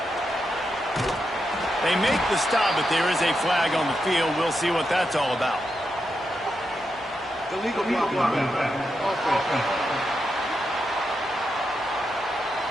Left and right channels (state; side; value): normal; both; correlation 0.85